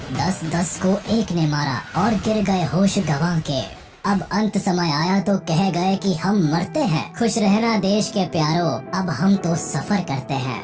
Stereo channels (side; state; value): both; identical; correlation 1.00